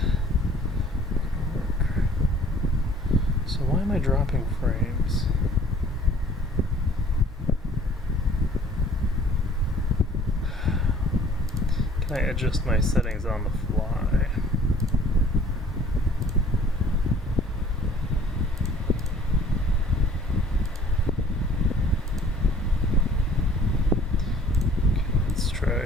So why am I dropping frames? Can I adjust my settings on the fly? Okay, let's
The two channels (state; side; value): normal; both; correlation 0.54